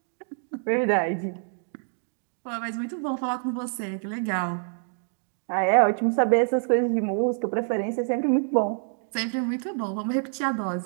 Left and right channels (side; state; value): left; silent; 60 dB below the other